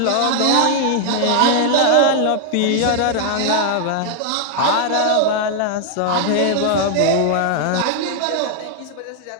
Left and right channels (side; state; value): both; different; correlation 0.00